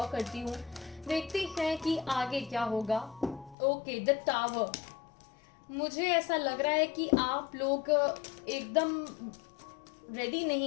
करती हूँ, देखते हैं कि आगे क्या होगा। Okay, the tower. मुझे ऐसा लग रहा है कि आप लोग एकदम रेडी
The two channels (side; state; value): right; drops out; at 3.6 s